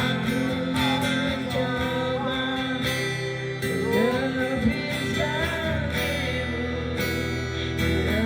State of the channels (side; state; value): both; identical; correlation 1.00